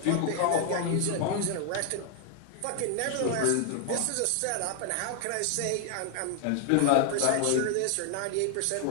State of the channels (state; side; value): different; both; correlation 0.00